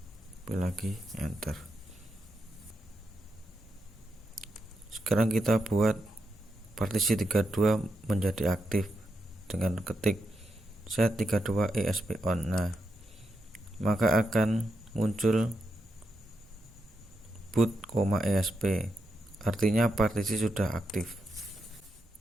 copy lagi, enter. Sekarang kita buat partisi 32 menjadi aktif dengan ketik set 32 ESP on. Nah, maka akan muncul boot, ESP, artinya partisi sudah aktif.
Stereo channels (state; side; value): normal; both; correlation 0.84